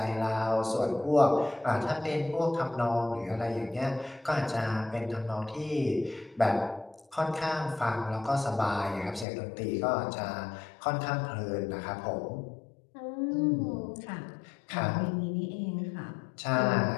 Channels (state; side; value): drops out; right; at 9.2 s